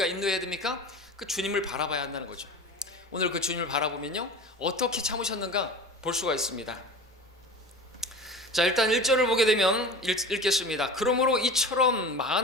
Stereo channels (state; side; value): normal; both; correlation 0.34